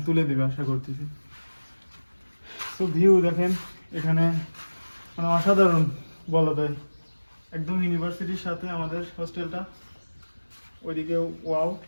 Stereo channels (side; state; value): both; inverted; correlation -1.00